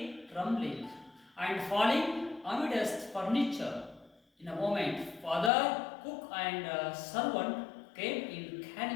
rumbling and falling amidst furniture. In a moment, father, cook, and servant came in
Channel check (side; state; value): right; drops out; at 5.5 s